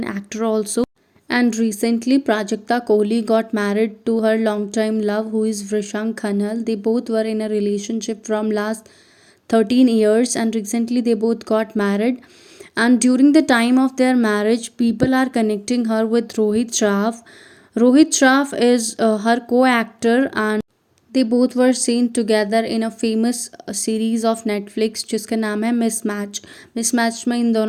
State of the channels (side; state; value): both; identical; correlation 1.00